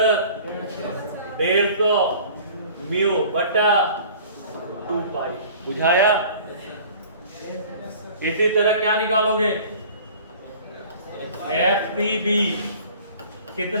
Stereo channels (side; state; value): both; inverted; correlation -0.47